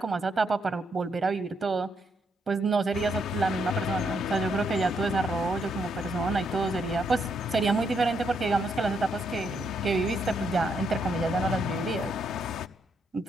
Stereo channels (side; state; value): both; normal; correlation 0.76